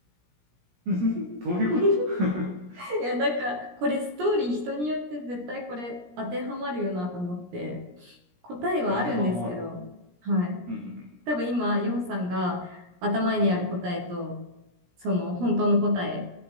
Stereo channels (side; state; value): left; late; 17 ms